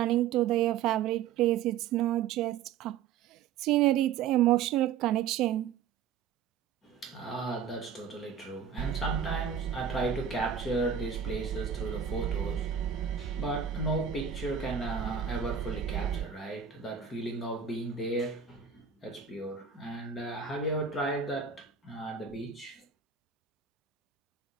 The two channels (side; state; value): left; quieter; 7.7 dB